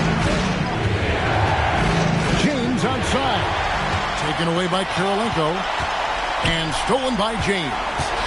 James outside. Taken away by Kurolenko. And stolen by James.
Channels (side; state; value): both; identical; correlation 1.00